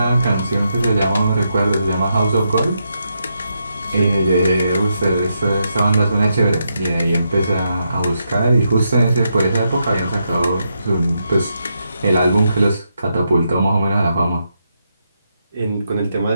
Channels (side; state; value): both; inverted; correlation -0.82